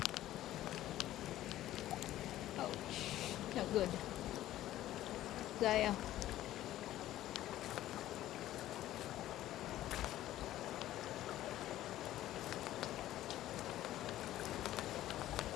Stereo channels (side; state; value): right; quieter; 13.9 dB